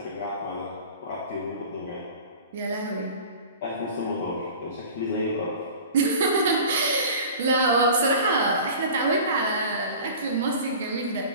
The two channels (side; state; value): both; inverted; correlation -0.40